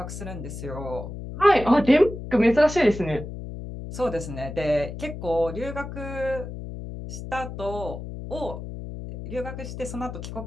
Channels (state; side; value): noise; left; hum, 9 dB below the sound